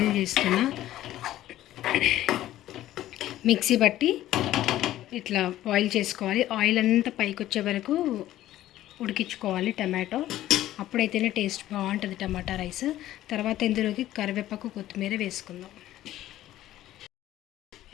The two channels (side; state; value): right; quieter; 13.9 dB